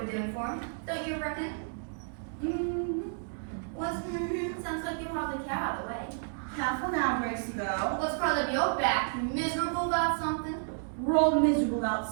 we're doing for them. Don't you reckon? What's sounds like you hardly care out of the way. Careful now, Gracie girl. What's curled up your back? You miserable about something? We're all miserable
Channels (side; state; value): left; silent; digital silence